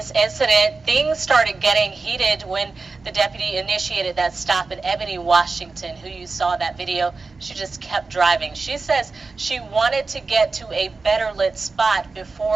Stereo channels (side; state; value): left; quieter; 4.0 dB